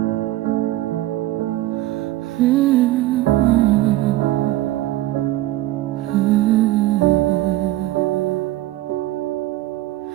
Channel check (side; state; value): left; quieter; 16.1 dB